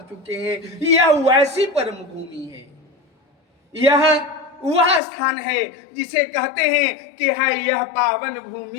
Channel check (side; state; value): right; drops out; at 5.0 s